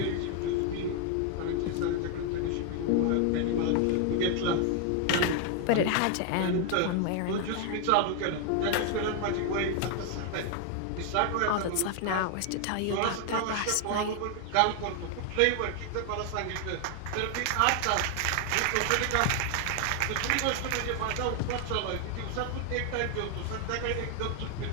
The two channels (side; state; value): both; different; correlation 0.01